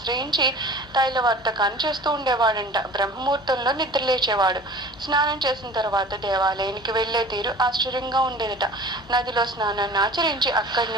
తైలవర్తకాన్ని చేస్తూ ఉండేవాడంట. బ్రహ్మముహూర్తంలో నిద్రలేచేవాడు. స్నానం చేసిన తర్వాత దేవాలయానికి వెళ్లే తీరు ఆశ్చర్యంగా ఉండేదట. నదిలో స్నానాన్ని ఆచరించి అక్కడి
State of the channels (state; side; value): normal; both; correlation 0.42